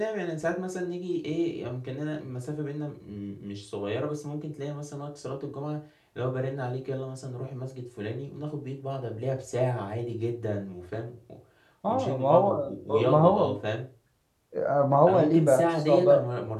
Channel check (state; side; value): identical; both; correlation 1.00